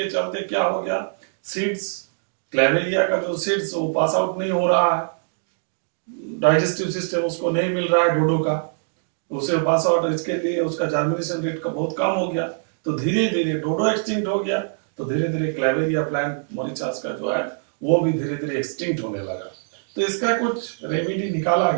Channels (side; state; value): left; silent; digital silence